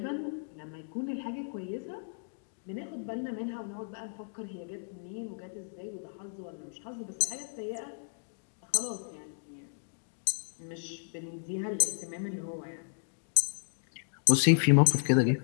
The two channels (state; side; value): silent; right; digital silence